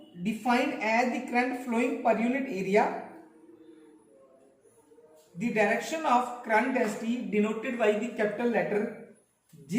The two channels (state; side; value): identical; both; correlation 1.00